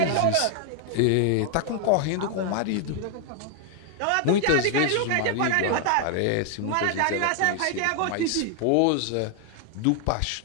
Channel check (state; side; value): different; both; correlation 0.00